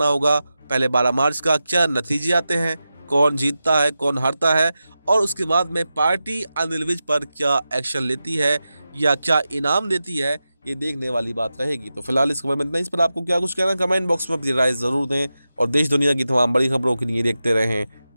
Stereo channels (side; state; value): both; inverted; correlation -0.92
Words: होगा पहले 12 मार्च का क्या नतीजे आते हैं, कौन जीतता है कौन हारता है और उसके बाद में पार्टी अनिल विज पर क्या एक्शन लेती है या क्या इनाम देती है, ये देखने वाली बात रहेगी। तो फिलहाल इस खबर में इतना ही। इस पर आपको क्या कुछ कहना है कमेंट बॉक्स में अपनी राय ज़रूर दें और देश दुनिया की तमाम बड़ी खबरों के लिए देखते रहें